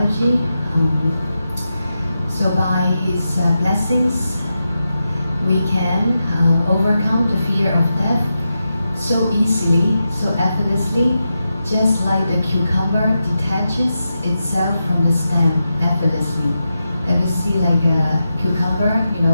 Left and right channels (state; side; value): inverted; both; correlation -0.89